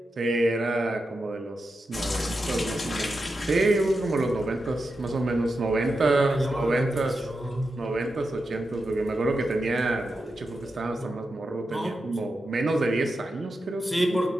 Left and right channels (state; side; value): normal; both; correlation 0.89